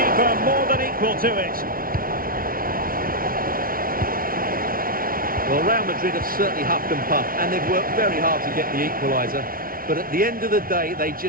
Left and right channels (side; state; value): left; late; 0.42 ms